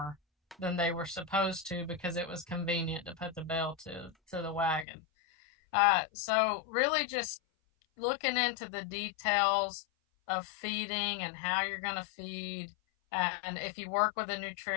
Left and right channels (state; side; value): drops out; right; at 4.9 s